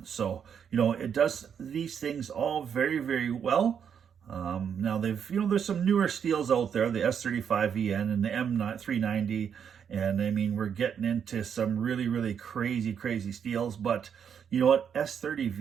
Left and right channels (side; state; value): left; quieter; 7.7 dB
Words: So, it does these things all very, very well. Now there's some newer steels out there, the S35EN and the M390, and we're getting into some really, really crazy steels, but you know what?